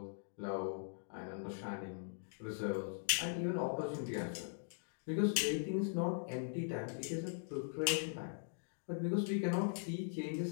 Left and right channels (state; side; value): silent; right; digital silence